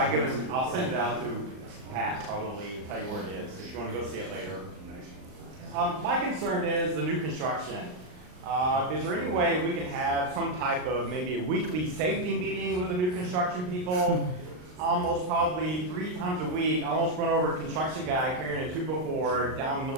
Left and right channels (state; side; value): late; left; 39 ms